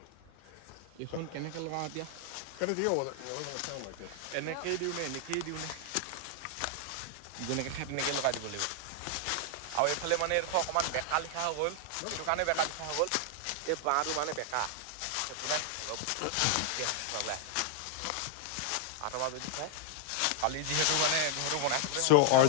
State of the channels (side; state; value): both; different; correlation 0.00